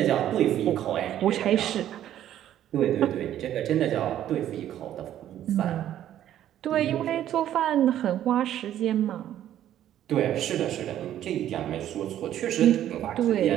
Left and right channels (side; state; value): left; quieter; 11.6 dB